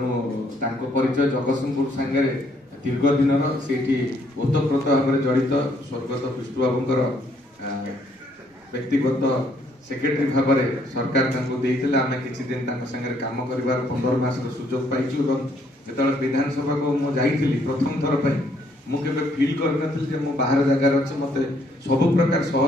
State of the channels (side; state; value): both; normal; correlation 0.68